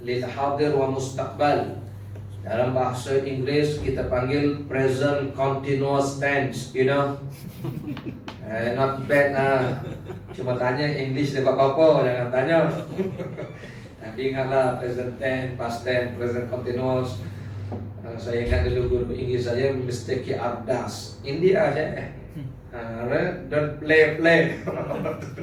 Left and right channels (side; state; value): both; identical; correlation 1.00